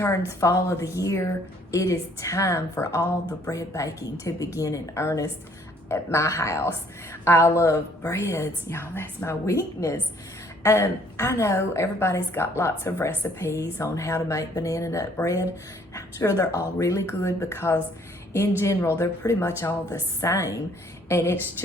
fall of the year, it is time for all the bread baking to begin in earnest at my house. I love breads, y'all, that's my weakness. I know everybody's got lots of recipes on how to make banana nut bread. I'm sure they're all really good because in general, they're pretty much all the same. And it's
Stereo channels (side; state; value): both; normal; correlation 0.62